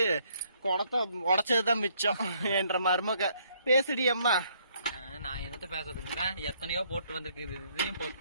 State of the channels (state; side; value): inverted; both; correlation -0.67